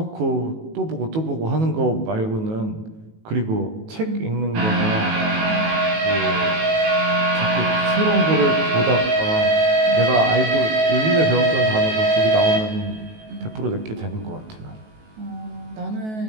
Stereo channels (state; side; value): late; left; 18 ms